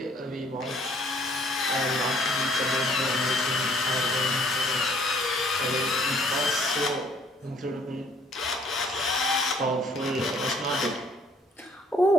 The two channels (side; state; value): both; normal; correlation 0.61